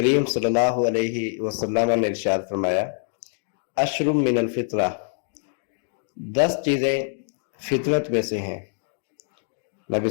صلی اللہ علیہ وسلم نے ارشاد فرمایا اشرم من الفطرہ، 10 چیزیں فطرت میں سے ہیں۔ نبی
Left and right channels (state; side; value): silent; right; digital silence